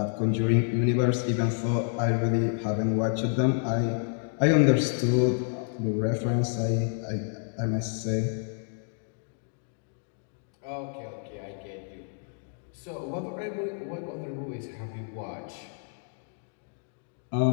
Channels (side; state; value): right; silent; 59 dB below the other